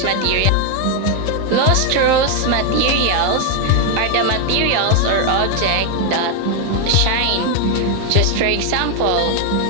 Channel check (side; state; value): both; different; correlation 0.01